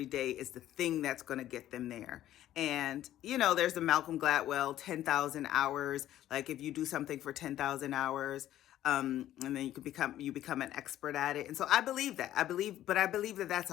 day is the thing that's going to get them there. And, there's the Malcolm Gladwell 10,000 hours. Like, if you do something for 10,000 hours, and then you become an expert at it. And so I believe that. I believe that that's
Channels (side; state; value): right; quieter; 12.9 dB